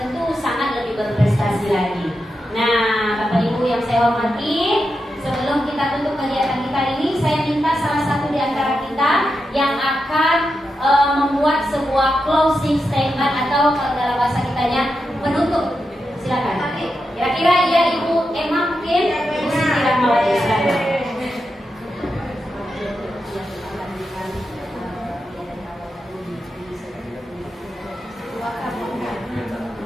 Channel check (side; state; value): both; normal; correlation 0.88